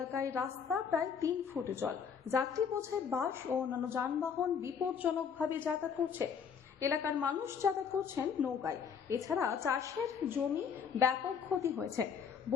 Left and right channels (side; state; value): right; quieter; 6.8 dB